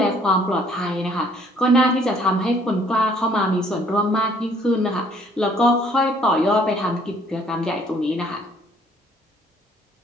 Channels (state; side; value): normal; both; correlation 0.61